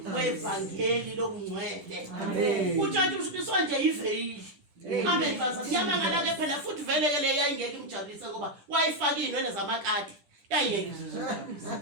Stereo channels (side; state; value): left; late; 10 ms